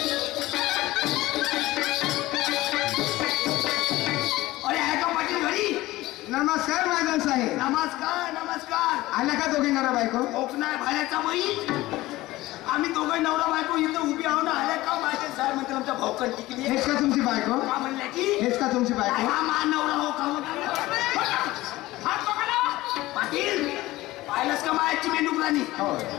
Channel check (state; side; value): quieter; right; 18.0 dB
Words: नमस्कार महाजन साहेब. नमस्कार नमस्कार. आल्या का दोघे नवरा बायको. ओपनाय भाड्याचा बाई. आम्ही दोघे नवरा बायको इथं उभी आहो ना. आल्या का महाजन साहेब म्हणतात आमच्या भाऊकन टिकली. हेच का तुमची बायको. का म्हणल्या की हेच का तुमची बायको. हा मा नवरा हो का पाटील पाहिलास का मायाची मेंढुकराणी.